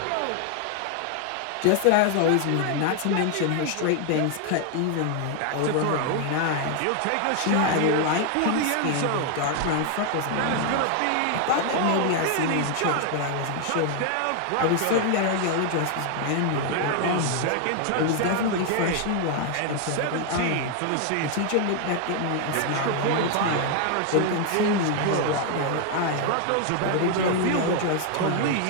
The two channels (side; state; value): both; different; correlation 0.00